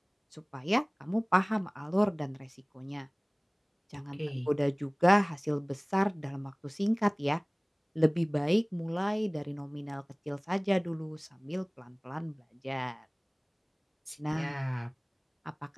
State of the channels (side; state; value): both; identical; correlation 1.00